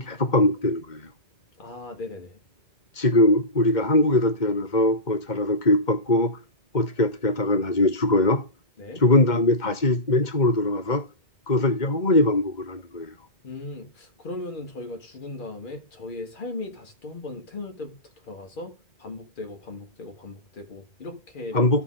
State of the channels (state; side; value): late; right; 2.1 ms